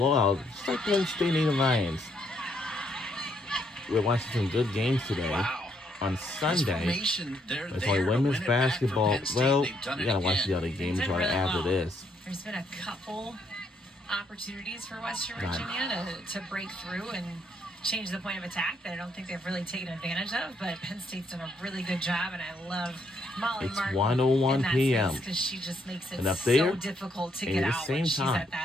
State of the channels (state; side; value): normal; both; correlation 0.72